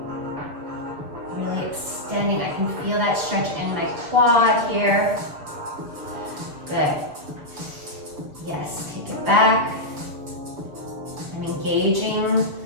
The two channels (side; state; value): left; late; 6.7 ms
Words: Really extending. I can feel that stretch in my quad here. Good. Yes, take it back. I'm engaging